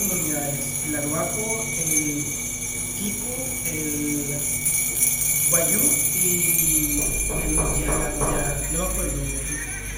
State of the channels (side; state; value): both; identical; correlation 1.00